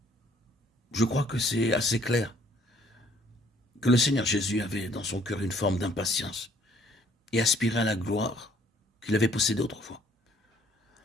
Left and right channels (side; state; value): both; normal; correlation 0.62